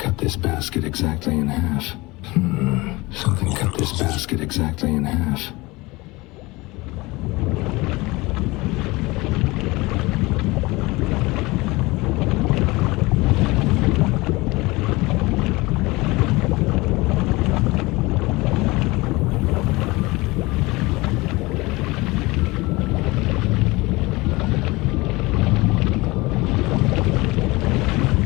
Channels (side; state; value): right; quieter; 22.4 dB